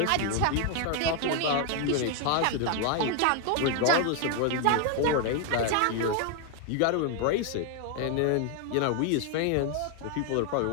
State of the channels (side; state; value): both; different; correlation 0.01